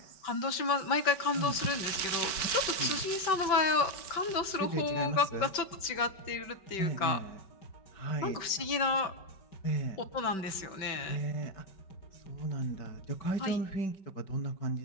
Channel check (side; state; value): right; late; 5.2 ms